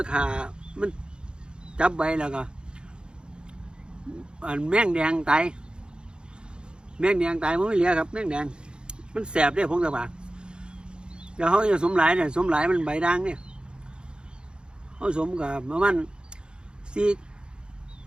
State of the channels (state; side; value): late; left; 0.051 ms